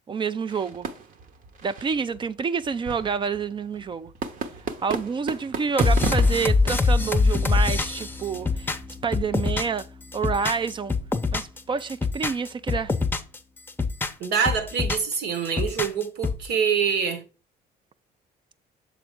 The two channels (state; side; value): normal; both; correlation 0.53